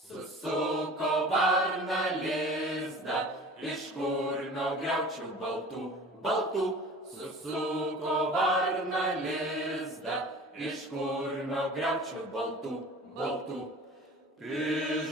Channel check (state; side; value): normal; both; correlation 0.42